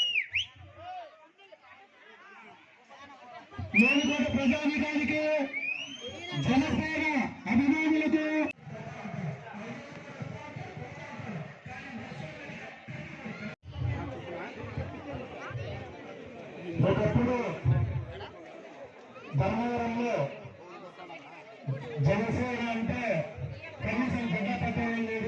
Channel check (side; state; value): both; identical; correlation 1.00